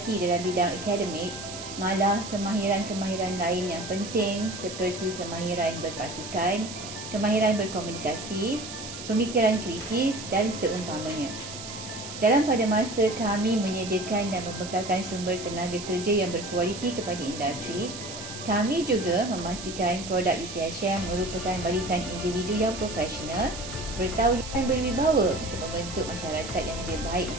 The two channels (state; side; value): noise; right; hiss, 11 dB below the sound